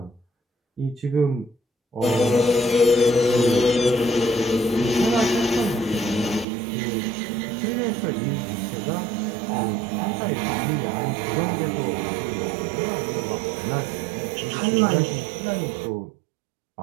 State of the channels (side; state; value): left; drops out; at 6.5 s